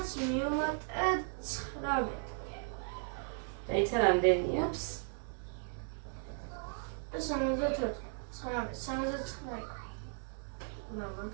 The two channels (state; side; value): silent; left; 54 dB below the other